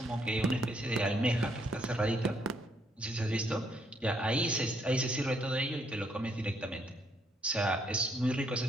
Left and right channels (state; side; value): normal; both; correlation 0.71